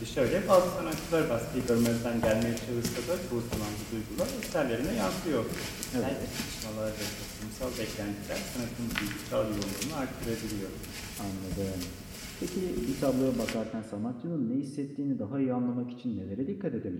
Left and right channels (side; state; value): both; identical; correlation 1.00